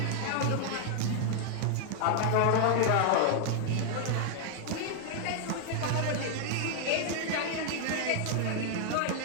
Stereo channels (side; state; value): both; different; correlation 0.00